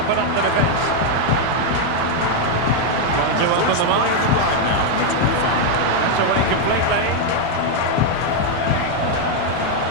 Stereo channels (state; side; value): different; both; correlation 0.01